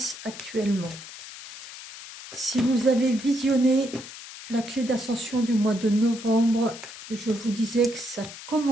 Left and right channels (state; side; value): noise; left; hiss, 14 dB below the sound